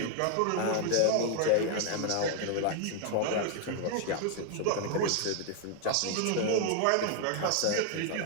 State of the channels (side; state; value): both; different; correlation 0.00